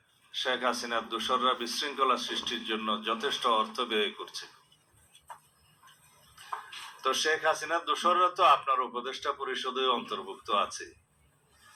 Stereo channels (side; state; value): both; identical; correlation 1.00